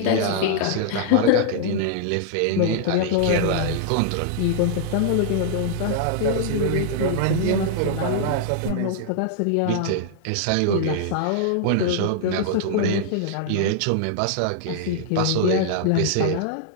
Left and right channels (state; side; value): different; both; correlation -0.01